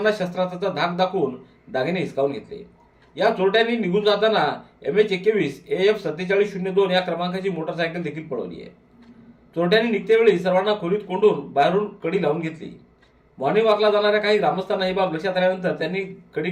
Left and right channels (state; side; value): identical; both; correlation 1.00